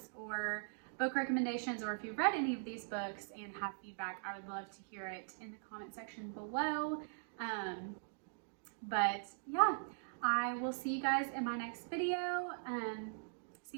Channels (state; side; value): silent; left; digital silence